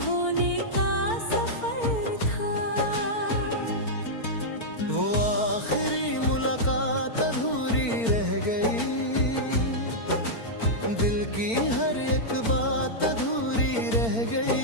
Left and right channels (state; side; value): late; right; 4.4 ms